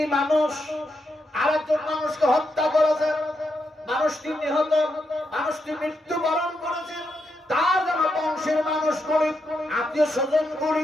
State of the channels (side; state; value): both; normal; correlation 0.83